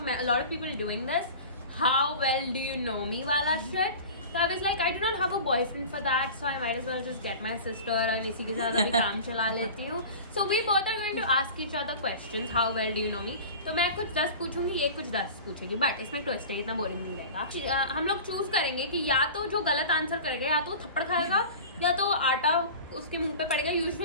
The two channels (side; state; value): both; inverted; correlation -0.36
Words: lot of people doing this. How well do you know me वाला shit. So I was like, I do not have a boyfriend for that, so I might as well just get my sister and इसी के साथ अभी काम चला लेती हूँ. So we both are going to ask each other questions. How well do you know me? तो मैं कुछ 10 पूछूंगी, ये कुछ 10 पूछेगी. बट इसमें ट्विस्ट है, इतना बोरिंग नहीं रहेगा. हम लोग चूज करेंगे कि या तो जो गलत आंसर करेगा या तो थप्पड़ खाएगा या तो आटा उसके मुंह पे पड़ेगा.